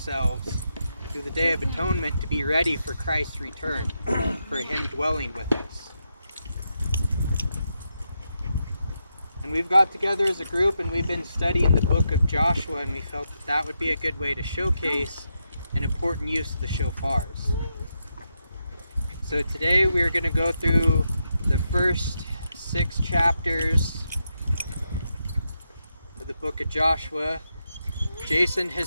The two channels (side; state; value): both; inverted; correlation -0.84